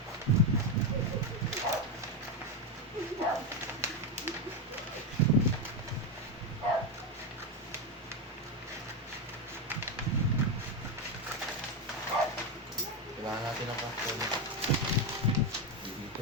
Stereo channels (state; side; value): normal; both; correlation 0.08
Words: Kailangan natin ng cartoon.